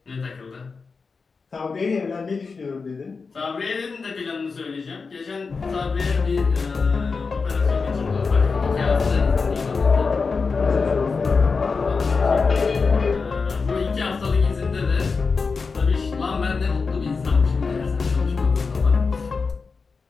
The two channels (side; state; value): right; quieter; 4.7 dB